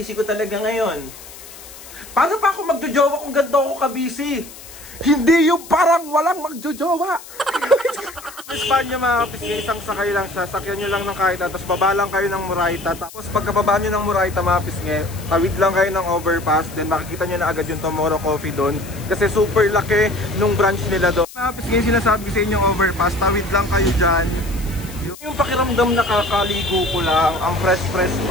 ko talaga ngayon. Paano pa ako magjojowa kung ganito ako ka-busy? Hindi yung parang walang magjojowa. Espanya mga kapisngi, isang sakay lang siya. Sakyan nyo lang ng kahit tapos baba lang kayo ng Moraita. Tapos pagkababa nyo ng Moraita mga kapisngi, tawid lang kayo ng overpass. Then makikita nyo na agad yung Tomorrow Coffee doon. Kasi super laki nung branch nila doon. Mga kapisngi, sinasabi ko sa inyong overpass, tawid lang kayo dyan. Yung pakiramdam na kakaligo ko lang, ang fresh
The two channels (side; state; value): left; noise; hiss, 17 dB below the sound